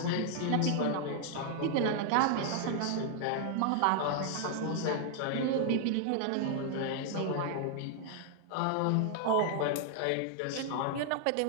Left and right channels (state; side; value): different; both; correlation 0.00